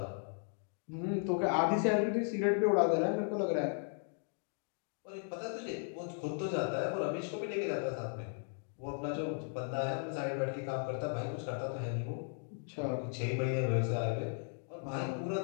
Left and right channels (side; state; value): right; silent; 54 dB below the other